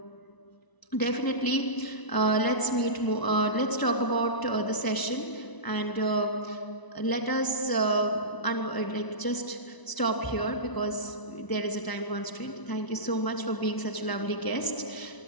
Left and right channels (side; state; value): right; late; 1.0 ms